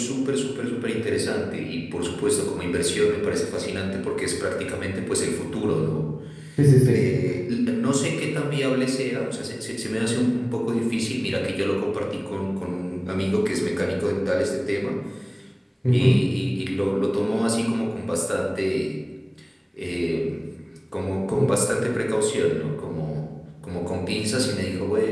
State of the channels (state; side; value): identical; both; correlation 1.00